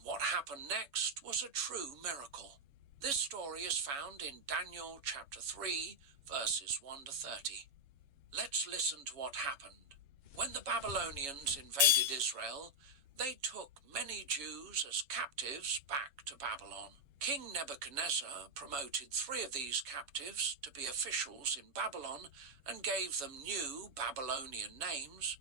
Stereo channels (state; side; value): late; left; 6.7 ms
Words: what happened next was a true miracle. This story is found in Daniel chapter 3, verses 1 to 30. Let's listen to what happened. When the Babylonians invaded Israel, they took many Jews as captives back to Babylon. King Nebuchadnezzar promoted 3 of these captives to be officials in Babylon and gave them new Babylonian names,